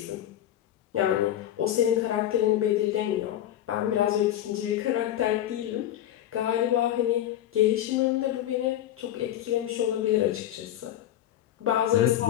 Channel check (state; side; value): quieter; right; 12.0 dB